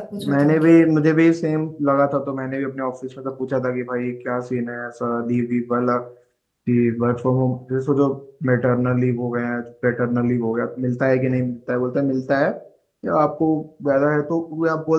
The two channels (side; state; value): both; identical; correlation 1.00